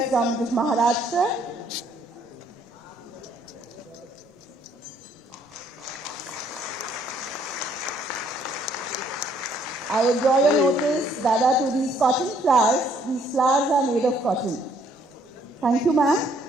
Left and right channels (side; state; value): both; normal; correlation 0.65